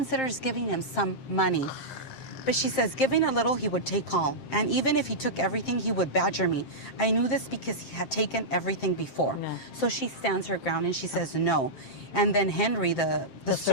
giving him some money. But she says, giving a little, he would take all. And even if he took everything, he would badger me. I knew this because he had taken everything before. Yeah. So she stands her ground and she says no. And then Henry, the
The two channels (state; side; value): late; right; 7.6 ms